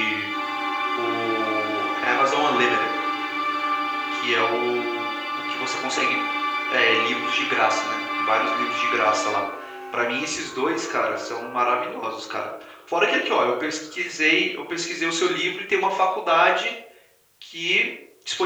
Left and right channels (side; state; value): both; identical; correlation 1.00